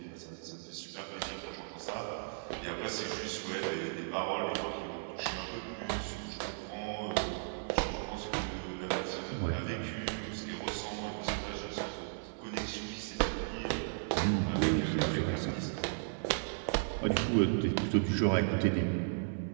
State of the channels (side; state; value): left; silent; 54 dB below the other